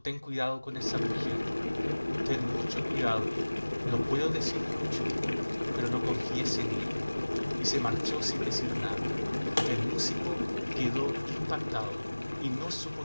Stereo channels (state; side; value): inverted; both; correlation -1.00